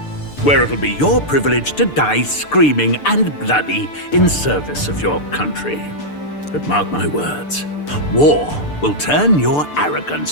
where it'll be your privilege to die screaming and bloody in service of your country. But mark my words, war will turn your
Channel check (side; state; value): right; late; 6.8 ms